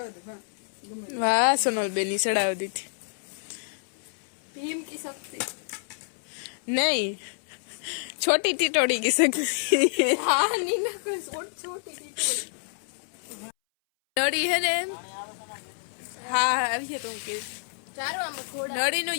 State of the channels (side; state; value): right; silent; 59 dB below the other